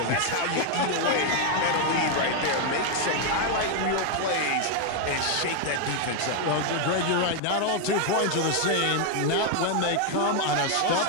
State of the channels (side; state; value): both; different; correlation 0.00